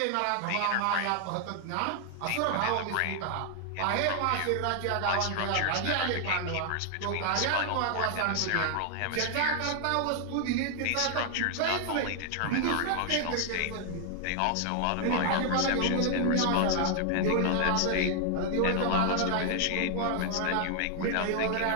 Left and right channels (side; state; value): both; different; correlation 0.00